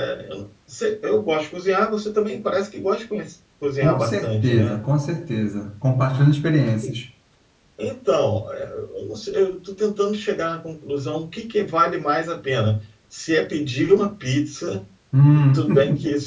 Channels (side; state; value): both; identical; correlation 1.00